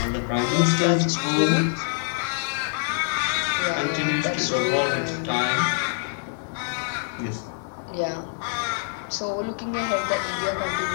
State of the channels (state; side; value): silent; right; digital silence